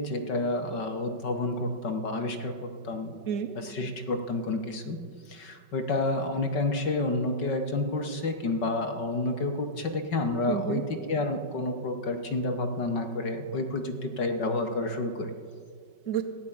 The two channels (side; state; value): right; late; 5.3 ms